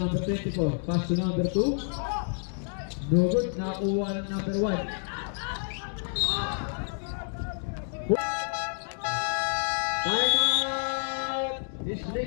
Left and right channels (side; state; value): right; silent; digital silence